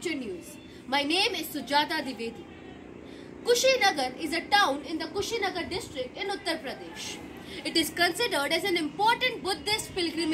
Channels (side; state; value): both; identical; correlation 1.00